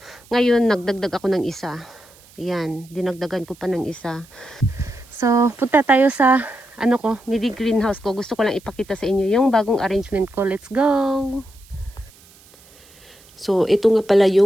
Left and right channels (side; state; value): right; noise; hiss, 26 dB below the sound